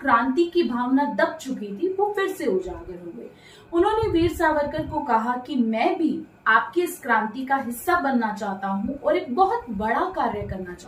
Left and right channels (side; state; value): both; identical; correlation 1.00